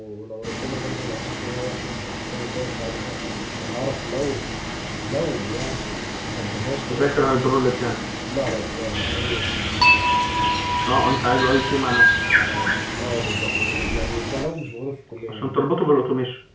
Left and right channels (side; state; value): both; identical; correlation 1.00